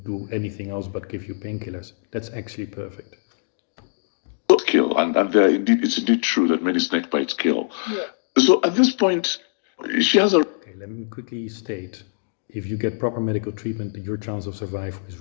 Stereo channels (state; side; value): silent; right; digital silence